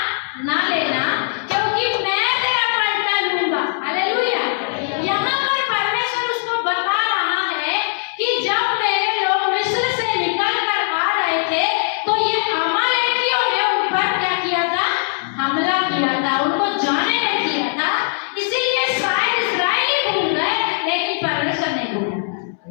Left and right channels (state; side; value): silent; right; 66 dB below the other